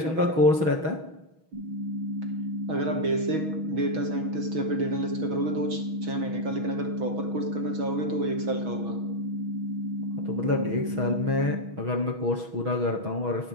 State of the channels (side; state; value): left; late; 6.3 ms